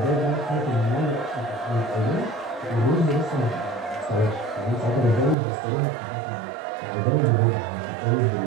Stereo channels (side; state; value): left; drops out; at 5.4 s